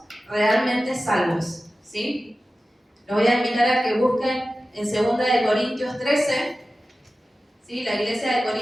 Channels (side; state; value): both; normal; correlation 0.95